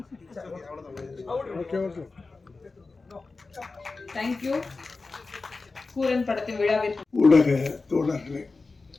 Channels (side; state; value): right; quieter; 3.8 dB